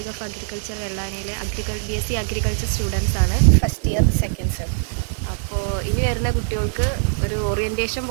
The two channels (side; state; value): left; silent; digital silence